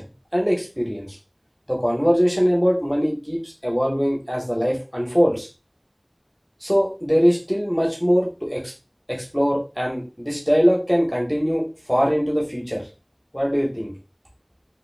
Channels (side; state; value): both; identical; correlation 1.00